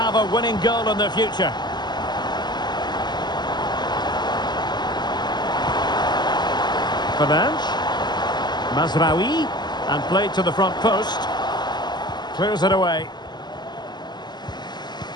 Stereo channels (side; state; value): right; late; 0.21 ms